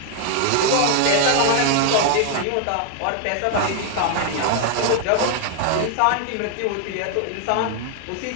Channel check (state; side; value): different; both; correlation 0.00